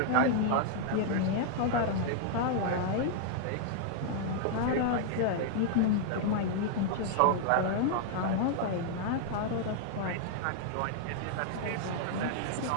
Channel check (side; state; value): both; different; correlation -0.01